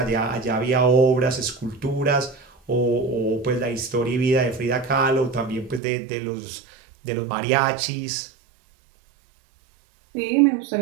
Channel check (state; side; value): drops out; left; at 5.8 s